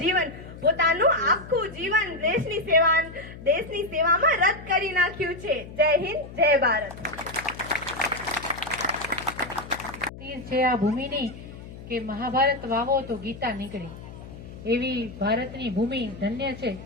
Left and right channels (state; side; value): noise; left; hum, 14 dB below the sound